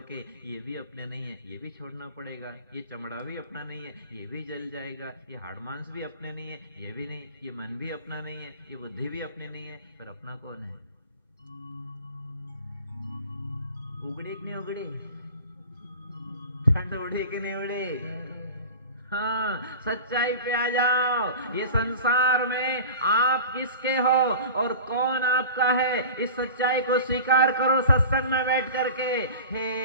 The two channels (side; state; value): both; inverted; correlation -0.37